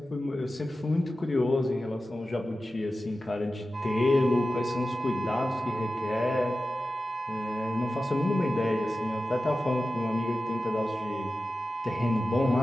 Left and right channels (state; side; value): normal; both; correlation 0.93